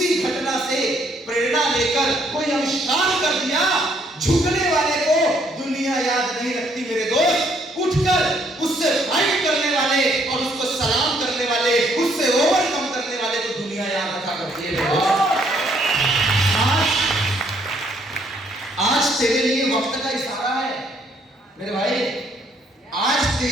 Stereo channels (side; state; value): both; normal; correlation 0.67